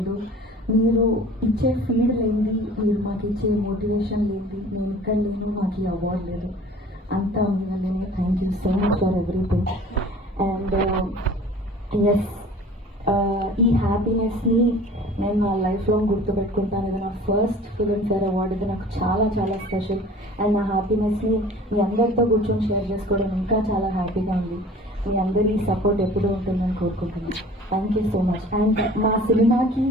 మీరు ఇచ్చే ఫీడ్ లేనిది, మీరు మాకు ఇచ్చే మోటివేషన్ లేనిది, నేను ఇక్కడ లేని మాకు ఈ అవార్డు లేదు. అంతా మీ వల్లనే. Thank you so much for everything. And yes, ఈ హ్యాపీనెస్ని నేను నా లైఫ్ లాంగ్ గుర్తుపెట్టుకుంటాను. ఇది నా ఫస్ట్ ఫిల్మ్ఫేర్ అవార్డు. ఇది నాకు చాలా చాలా స్పెషల్. అండ్ నా హ్యాపీనెస్ని మీ అందరితో కూర్చొని షేర్ చేసుకోవడం ఇంకా చాలా హ్యాపీగా ఉంది. మీ అందరి సపోర్ట్ ఎప్పుడూ ఉంటుందని కోరుకుంటున్నాను. Thank you so much. And మా సినిమాకి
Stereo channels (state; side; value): normal; both; correlation 0.46